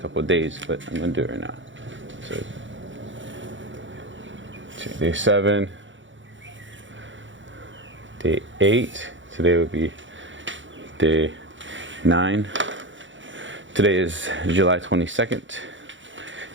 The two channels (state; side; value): late; left; 0.55 ms